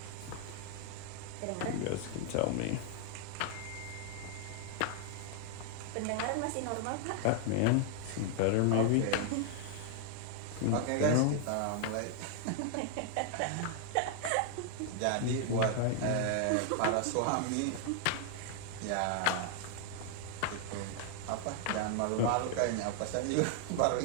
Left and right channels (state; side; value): different; both; correlation 0.00